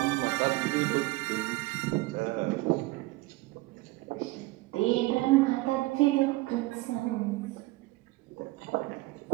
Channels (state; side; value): quieter; left; 20.5 dB